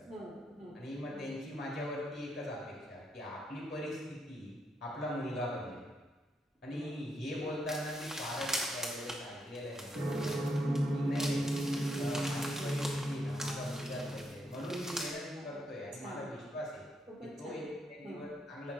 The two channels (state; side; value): normal; both; correlation 0.78